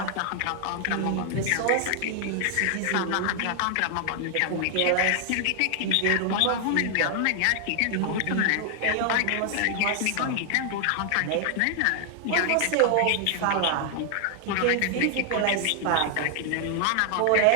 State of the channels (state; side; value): different; both; correlation 0.00